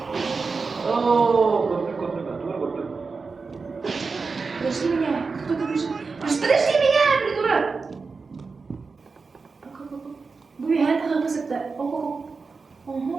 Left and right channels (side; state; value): left; quieter; 4.5 dB